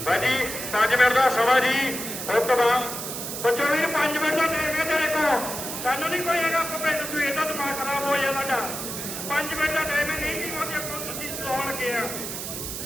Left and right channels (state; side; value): noise; right; hiss, 6 dB below the sound